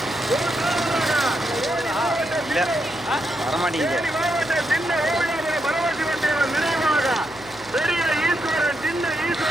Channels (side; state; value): left; noise; hum, 22 dB below the sound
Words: மாவட்டம் சின்ன ஓவியாபுரம் பரமசிவன் தேவன் நினைவாக பெரிய ஈஸ்வரன் சின்ன